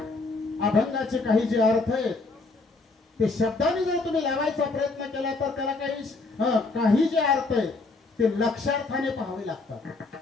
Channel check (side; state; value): right; quieter; 3.7 dB